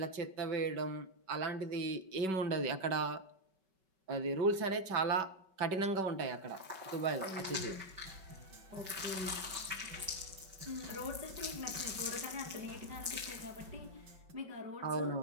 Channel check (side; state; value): left; late; 5.3 ms